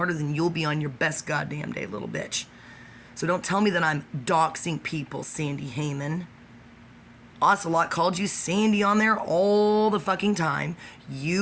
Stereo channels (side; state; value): both; identical; correlation 1.00